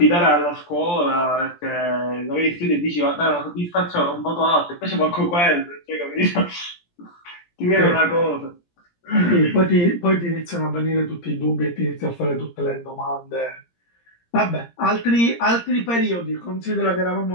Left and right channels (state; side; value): late; right; 17 ms